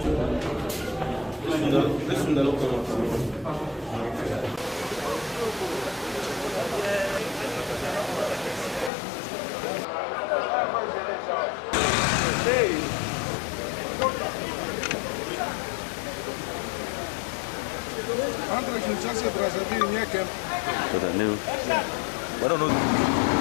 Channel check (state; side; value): drops out; right; at 8.9 s